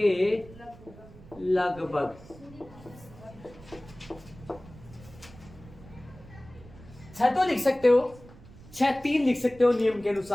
लगभग। छह तो लिख सकते हो, 6 3 लिख सकते हो, नियम के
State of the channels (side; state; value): right; noise; rumble, 20 dB below the sound